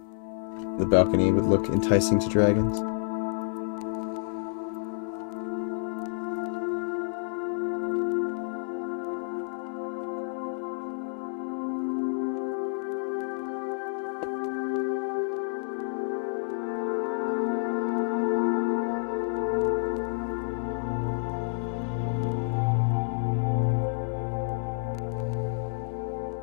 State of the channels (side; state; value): right; silent; digital silence